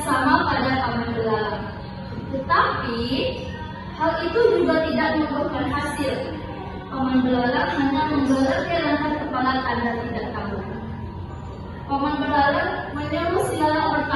sama pada paman belalang. Tetapi hal itu juga tidak membuahkan hasil. Paman belalang hanya menggeleng-gelengkan kepala tanda tidak tahu. Paman belalang menyuruh si lalat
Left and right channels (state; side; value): identical; both; correlation 1.00